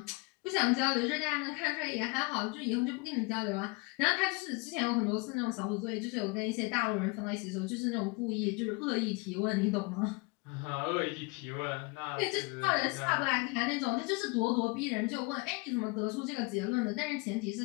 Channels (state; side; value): quieter; right; 28.0 dB